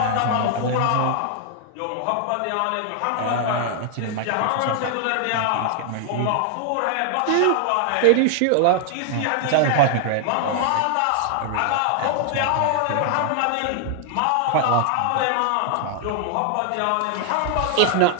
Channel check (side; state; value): both; different; correlation 0.00